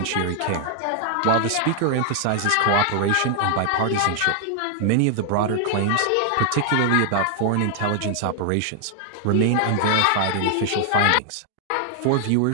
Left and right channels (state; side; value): different; both; correlation 0.00